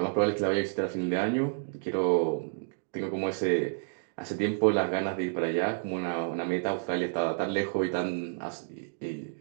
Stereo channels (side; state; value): left; silent; digital silence